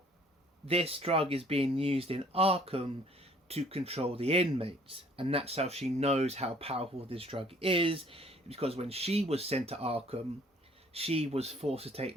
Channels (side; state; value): both; normal; correlation 0.57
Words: this drug is being used in Arkham to control the inmates, and that's how she knows how powerful this drug is, because when she was sent to Arkham, she was forced to take